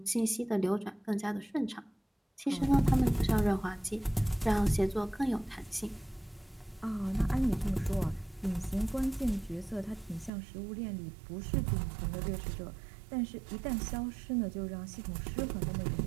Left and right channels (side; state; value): left; drops out; at 10.3 s